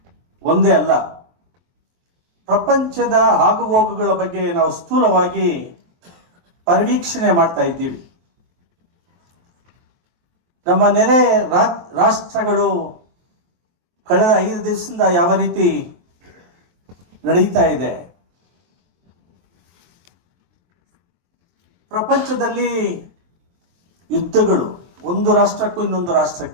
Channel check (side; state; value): left; late; 23 ms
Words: ಒಂದೇ ಅಲ್ಲ, ಪ್ರಪಂಚದ ಆಗುಹೋಗುಗಳ ಬಗ್ಗೆ ನಾವು ಸ್ಥೂಲವಾಗಿ ಪರಿವೀಕ್ಷಣೆ ಮಾಡ್ತಾ ಇದ್ದೀವಿ. ನಮ್ಮ ನೆರೆ ರಾಷ್ಟ್ರಗಳು ಕಳೆದ 5 ದಿವಸದಿಂದ ಯಾವ ರೀತಿ ನಡೀತಾ ಇದೆ, ಪ್ರಪಂಚದಲ್ಲಿ ಯುದ್ಧಗಳು ಒಂದು ರಾಷ್ಟ್ರಕ್ಕೂ ಇನ್ನೊಂದು